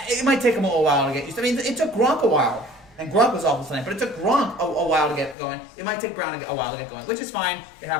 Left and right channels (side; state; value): right; drops out; at 5.4 s